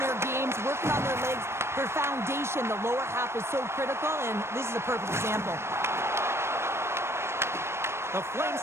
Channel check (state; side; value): late; left; 0.12 ms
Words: games, working on their legs. Their foundation, the lower half, is so critical, and this is a perfect example. The